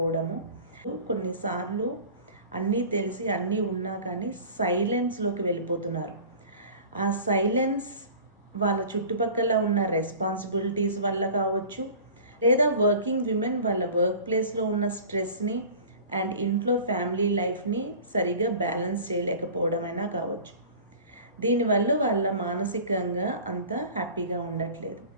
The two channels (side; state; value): both; inverted; correlation -0.41